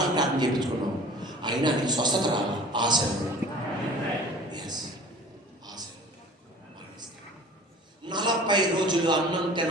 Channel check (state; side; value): normal; both; correlation 0.45